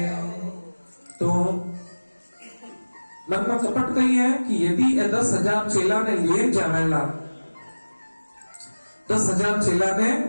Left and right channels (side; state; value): both; inverted; correlation -1.00